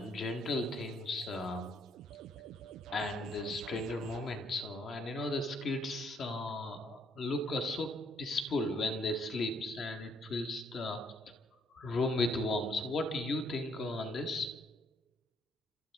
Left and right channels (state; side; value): normal; both; correlation 0.69